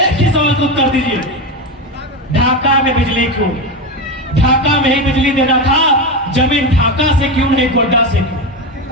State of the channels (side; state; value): both; normal; correlation 0.16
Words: ही सवाल का उत्तर दीजिए, ढाका में बिजली क्यों? ढाका में ही बिजली देना था, जमीन ढाका से क्यों नहीं गोड्डा से क्यों?